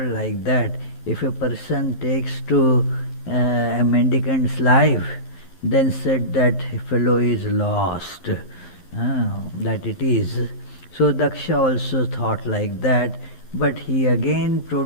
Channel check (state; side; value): late; right; 12 ms